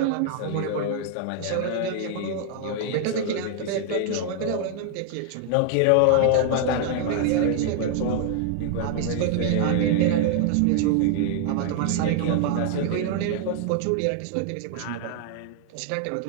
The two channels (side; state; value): both; different; correlation 0.00